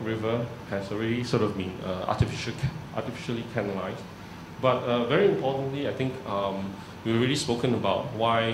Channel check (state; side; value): identical; both; correlation 1.00